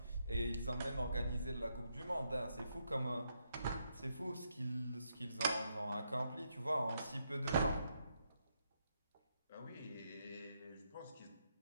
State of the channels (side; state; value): both; inverted; correlation -0.79